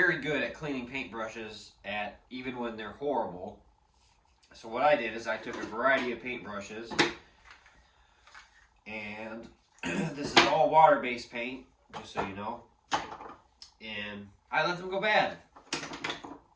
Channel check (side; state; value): both; identical; correlation 1.00